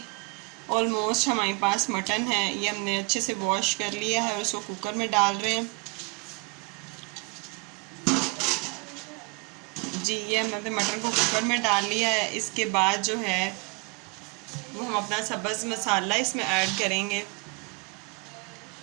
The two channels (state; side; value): quieter; left; 30.3 dB